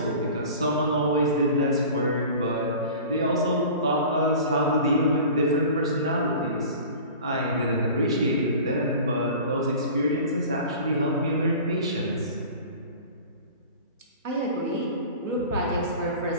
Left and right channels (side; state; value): both; inverted; correlation -0.39